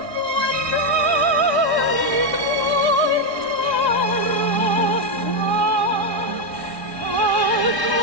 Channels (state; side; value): late; right; 1.9 ms